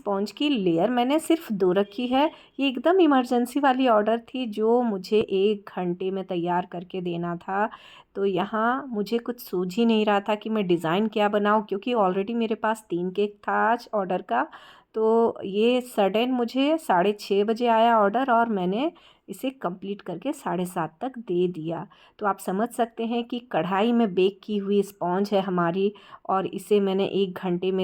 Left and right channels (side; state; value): both; identical; correlation 1.00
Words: की लेयर मैंने सिर्फ 2 रखी है। ये एकदम इमरजेंसी वाली ऑर्डर थी जो मुझे 1 घंटे में तैयार करके देना था। तो यहाँ मुझे कुछ सूझ ही नहीं रहा था कि मैं डिज़ाइन क्या बनाऊँ, क्योंकि ऑलरेडी मेरे पास 3 केक था आज ऑर्डर का। तो ये सडन मुझे 6:30 बजे आया ऑर्डर और मैंने इसे कंप्लीट करके 7:30 तक दे दिया। तो आप समझ सकते हैं कि कढ़ाई में बेक की हुई स्पॉन्ज है हमारी और इसे मैंने 1 घंटे